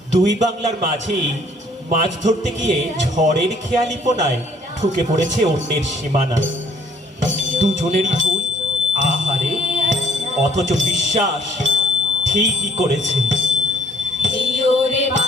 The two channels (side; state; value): both; normal; correlation 0.61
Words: দুই বাংলার মাঝেই মাছ ধরতে গিয়ে ঝড়ের খেয়ালিপনায় ঢুকে পড়েছে অন্যের সীমানা। দুজনেরই ভুল, আহারে, অথচ বিশ্বাস ঠিকই করেছে।